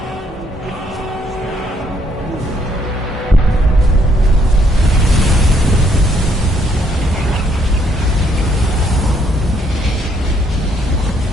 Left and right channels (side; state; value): both; normal; correlation 0.69